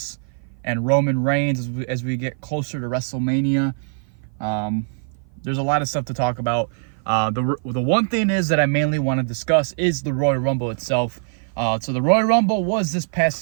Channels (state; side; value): silent; left; 55 dB below the other